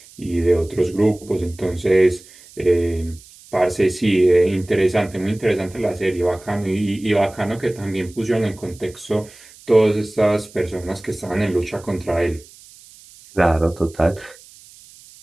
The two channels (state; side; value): noise; right; hiss, 23 dB below the sound